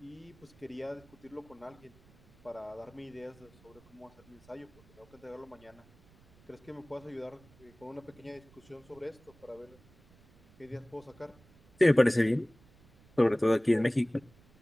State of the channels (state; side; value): noise; right; rumble, 27 dB below the sound